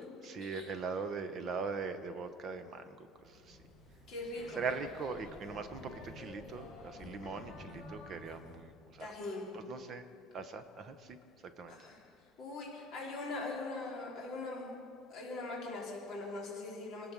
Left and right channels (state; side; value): normal; both; correlation 0.47